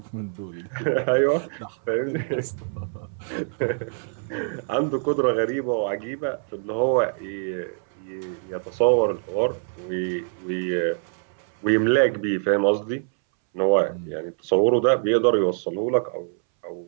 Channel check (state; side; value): silent; left; 62 dB below the other